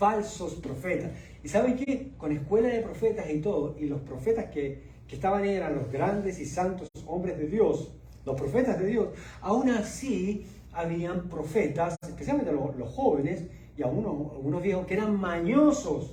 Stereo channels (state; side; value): identical; both; correlation 1.00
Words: profetas. ¿Y saben qué? Con escuela de profetas y todo, y los profetas que estaban ahí eran los grandes y santos hombres de Dios, los profetas de Dios, aún así habían profetas, especialmente los jóvenes y algunos viejos, que eran